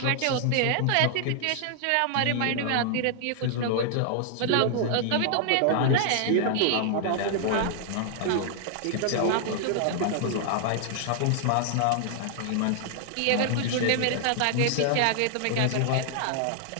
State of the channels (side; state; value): both; different; correlation -0.01